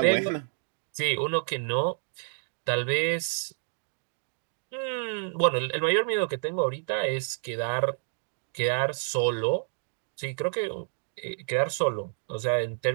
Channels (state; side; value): silent; left; digital silence